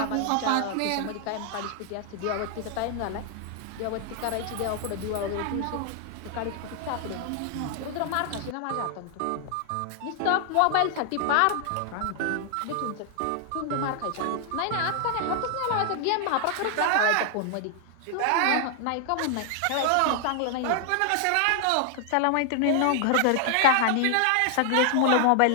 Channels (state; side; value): different; both; correlation 0.00